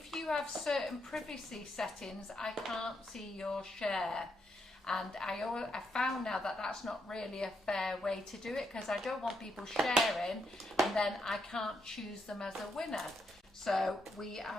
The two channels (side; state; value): both; normal; correlation 0.79